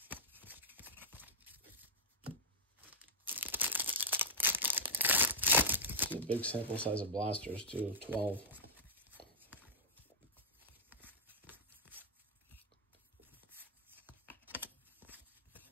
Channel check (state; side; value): normal; both; correlation -0.06